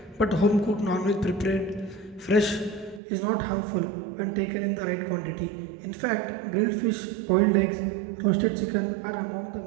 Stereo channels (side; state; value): left; drops out; at 3.0 s